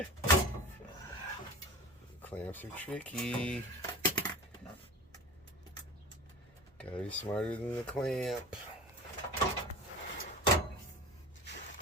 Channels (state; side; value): normal; both; correlation 0.35